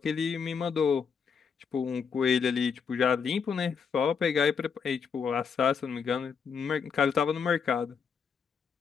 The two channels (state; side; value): quieter; right; 6.2 dB